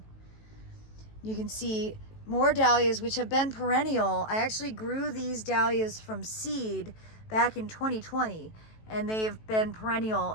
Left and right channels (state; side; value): late; right; 18 ms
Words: You can see more dahlias, which have been perennial. I actually grew these dahlias from seed back in 2020, and they've been perennial